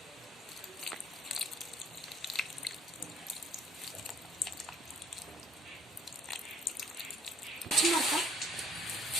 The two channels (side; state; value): both; normal; correlation 0.60